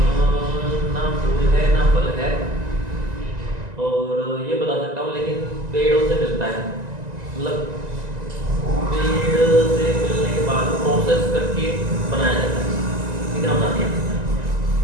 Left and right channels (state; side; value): late; left; 1.9 ms